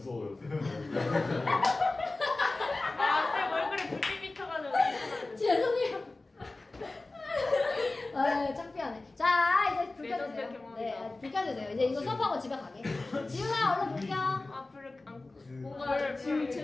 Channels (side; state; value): right; quieter; 3.2 dB